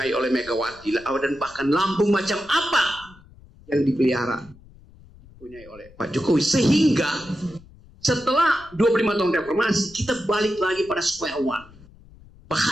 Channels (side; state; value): left; noise; rumble, 24 dB below the sound